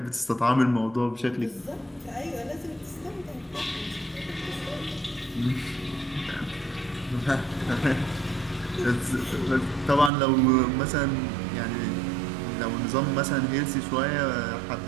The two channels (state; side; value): drops out; left; at 10.1 s